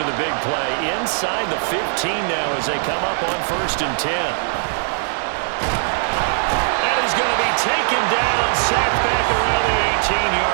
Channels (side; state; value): left; silent; digital silence